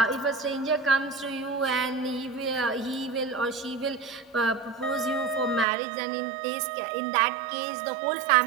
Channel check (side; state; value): left; drops out; at 5.7 s